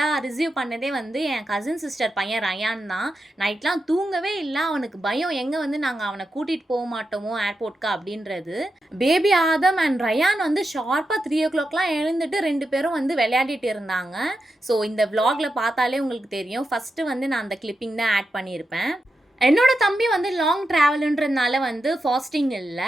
ரிசீவ் பண்ணதே வந்து என் கசின் சிஸ்டர் பையன் ரயான் தான். நைட்லாம் தூங்கவே இல்ல. அவனுக்கு பயம் எங்க வந்து நாங்க அவன கூட்டிட்டு போ மாட்டோமோ ஏர்போர்ட்க்கு அப்படின்றது. பேபி ஆதம் அண்ட் ரயான் வந்து ஷார்ப்பா 3:00லாம் எழுந்துட்டு 2 பேரும் வந்து விளையாடிட்டு இருந்தாங்க. ஸோ இந்த விளாக்ல பார்த்தாலே உங்களுக்கு தெரியும். ஃபர்ஸ்ட்டு வந்து நான் அந்த கிளிப்பிங் தான் ஆட் பண்ணியிருப்பேன். என்னோட தம்பி வந்து லாங் ட்ராவலுன்றதுனால வந்து ஃபாஸ்டிங் இல்ல.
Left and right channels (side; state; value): both; normal; correlation 0.88